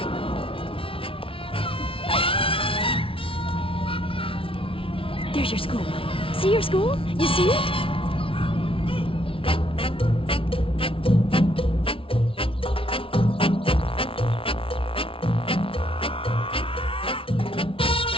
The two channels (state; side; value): late; right; 0.26 ms